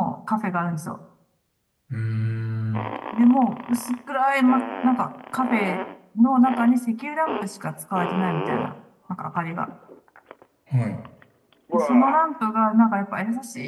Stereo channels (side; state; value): both; identical; correlation 1.00